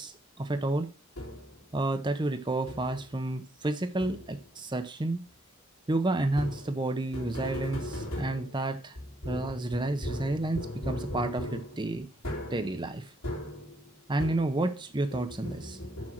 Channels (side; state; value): both; normal; correlation 0.74